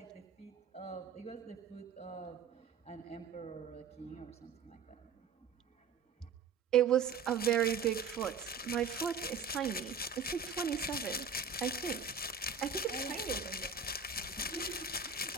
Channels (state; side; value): quieter; left; 5.7 dB